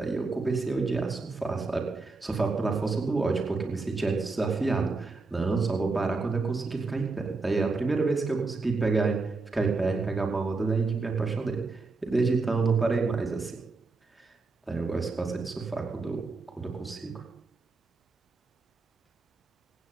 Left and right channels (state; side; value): quieter; left; 3.8 dB